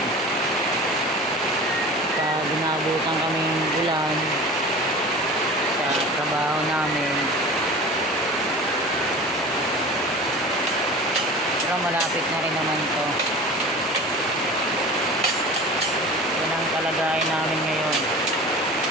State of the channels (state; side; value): normal; both; correlation 0.37